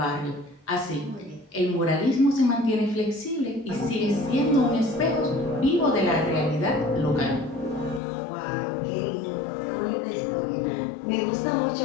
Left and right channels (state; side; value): drops out; right; at 8.0 s